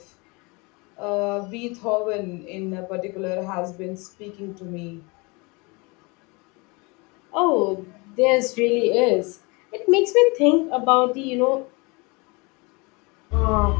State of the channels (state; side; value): quieter; right; 27.8 dB